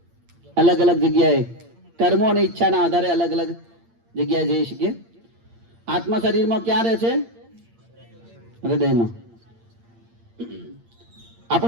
અલગ અલગ જગ્યાએ, કર્મો અને ઈચ્છાના આધારે અલગ અલગ જગ્યાએ જઈ શકીએ. આત્મા શરીરમાં ક્યાં રહે છે? હૃદયમાં.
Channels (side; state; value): left; late; 8.7 ms